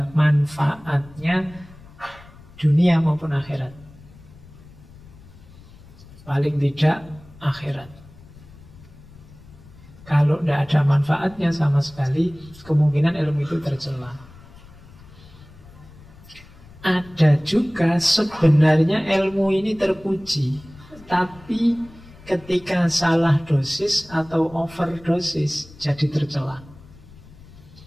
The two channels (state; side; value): noise; left; rumble, 22 dB below the sound